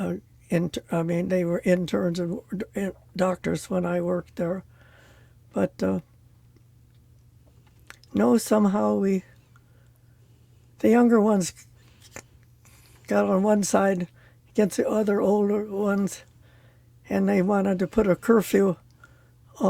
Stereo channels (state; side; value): identical; both; correlation 1.00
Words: They were interns and doctors when I worked there, but no, somehow the younger ones got on one side against the other older ones, and they wanted to put a curfew